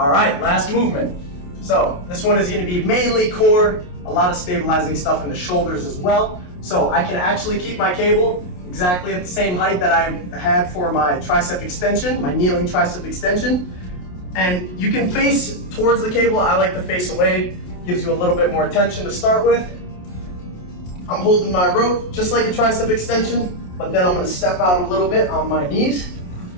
right, last movement. So this one is gonna be mainly core, a lot of stabilizing stuff in the shoulders as well. So I can actually keep my cable exactly at the same height that I had for my tricep extension, my kneeling tricep extension. And you can face towards the cable. I like to face away, gives you a little bit more tension to start with. I'm holding my rope just like a tricep extension, but then I'm gonna step out a little bit on my knees,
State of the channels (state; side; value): late; right; 28 ms